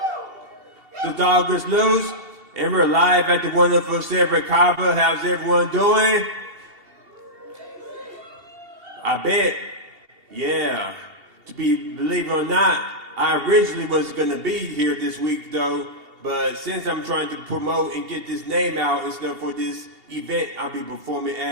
The dog is loose, and we're live at the wonderful Silver Kava. How's everyone doing? I bet. Yeah. Believe it or not, I originally was gonna be here this week though, but since I'm trying to promote and get this name out and stuff for this event I'll be performing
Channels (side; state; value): left; late; 2.7 ms